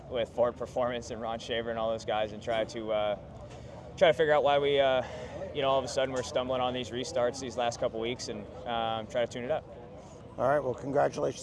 Ford Performance and Ron Shaver and all those guys and try to figure out why we you know, all of a sudden we're stumbling on these restarts these last couple weeks, and try to tune it up. All right, well,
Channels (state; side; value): identical; both; correlation 1.00